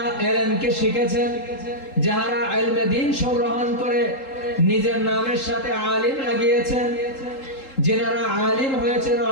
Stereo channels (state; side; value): late; right; 3.8 ms